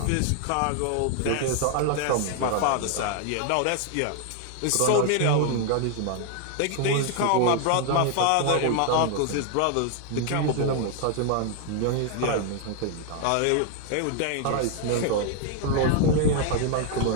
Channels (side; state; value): both; different; correlation 0.00